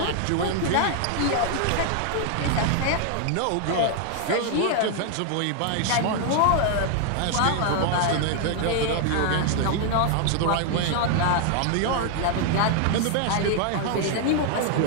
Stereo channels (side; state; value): both; different; correlation 0.00